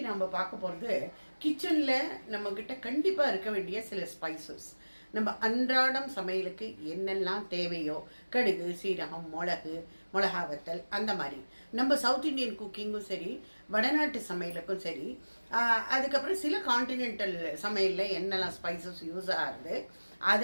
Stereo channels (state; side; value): inverted; both; correlation -1.00